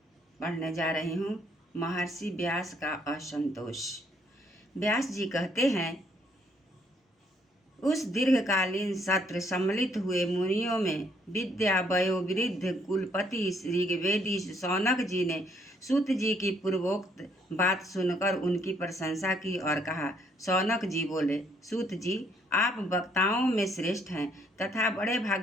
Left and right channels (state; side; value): normal; both; correlation 0.67